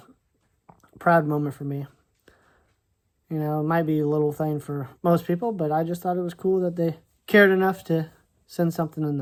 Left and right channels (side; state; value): both; identical; correlation 1.00